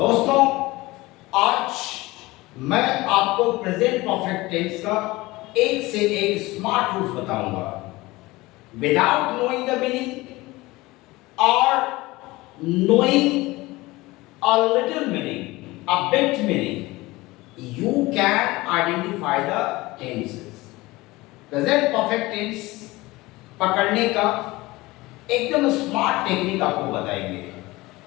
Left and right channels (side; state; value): right; quieter; 20.5 dB